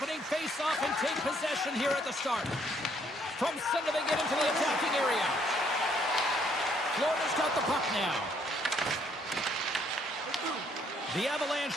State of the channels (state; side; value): normal; both; correlation 0.67